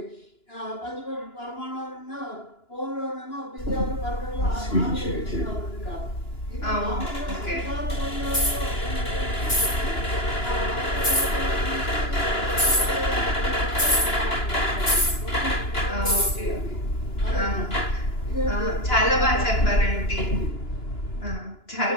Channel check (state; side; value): late; right; 2.9 ms